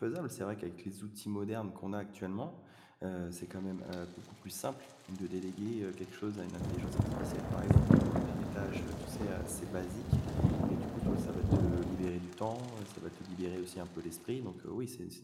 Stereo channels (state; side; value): identical; both; correlation 1.00